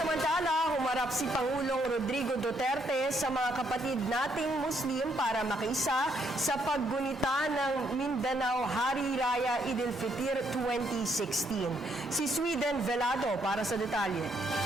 Samantala, humarap si Pangulong Rodrigo Duterte sa mga kapatid nating Muslim para makiisa sa paggunita ng Mindanao Hari Raya Eid al-Fitr 2016. Si Sweden Velado para sa detalye.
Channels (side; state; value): both; normal; correlation 0.72